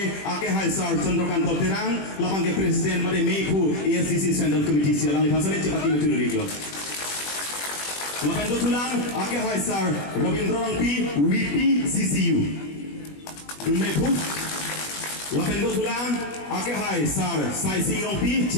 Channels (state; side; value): late; right; 21 ms